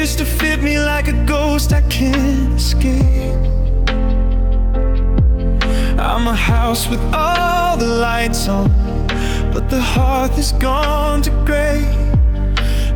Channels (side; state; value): both; identical; correlation 1.00